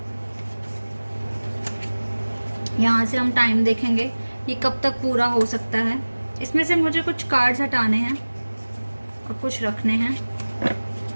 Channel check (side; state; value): both; inverted; correlation -1.00